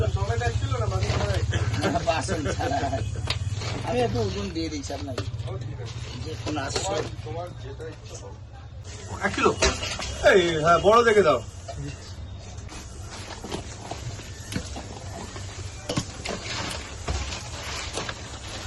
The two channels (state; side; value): identical; both; correlation 1.00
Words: আমি একটু ওজন দিয়ে দিচ্ছি আপনাকে, যে কোনো আসছে 1 কিলো। এই হ্যাঁ, বড় দেখে দাও।